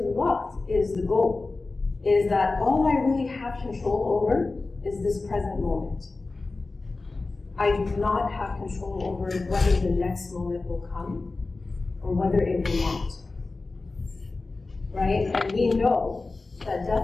is the goal, is that all I really have control over is this present moment. I do not have control over whether the next moment will come or whether it will not. Right? And we know that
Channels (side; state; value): right; quieter; 3.5 dB